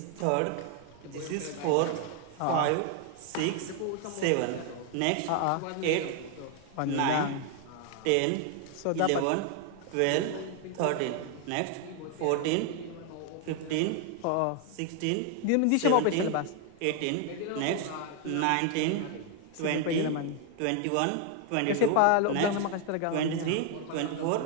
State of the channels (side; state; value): both; different; correlation 0.00